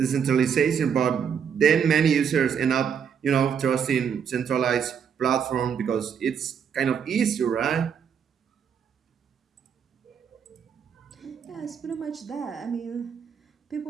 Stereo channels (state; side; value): quieter; left; 7.4 dB